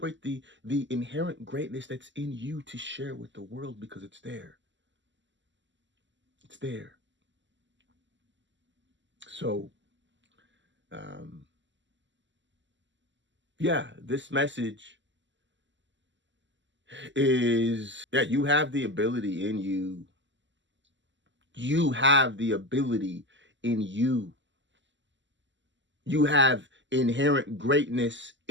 the inherent greatness that's in you to share with the world, because it's there. It's there. So, this message is, you have the ability in you. You have the ability in you. You have inherent greatness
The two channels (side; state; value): left; late; 0.54 ms